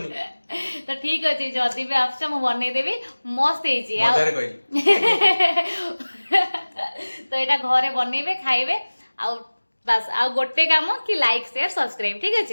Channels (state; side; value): inverted; both; correlation -1.00